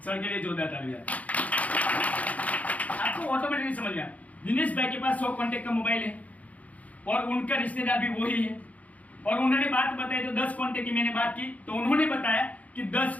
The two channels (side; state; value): right; late; 0.071 ms